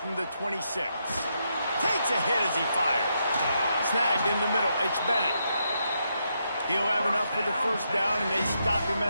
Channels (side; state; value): both; inverted; correlation -0.80